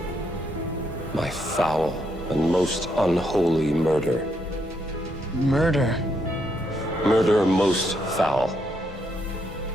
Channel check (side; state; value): both; normal; correlation 0.77